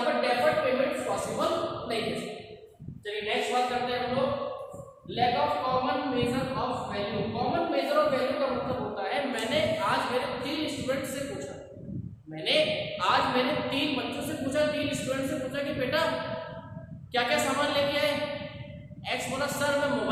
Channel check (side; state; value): both; identical; correlation 1.00